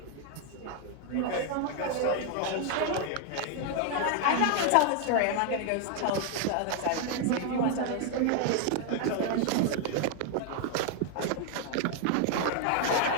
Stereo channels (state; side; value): different; both; correlation 0.00